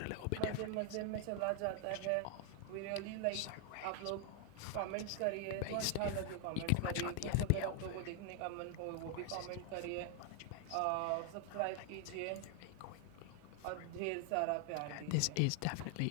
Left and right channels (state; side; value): different; both; correlation 0.00